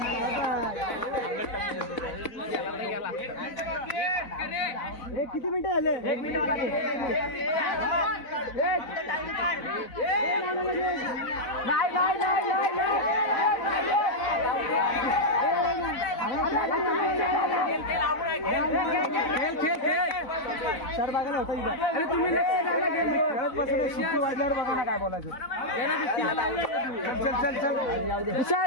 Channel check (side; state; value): right; late; 4.0 ms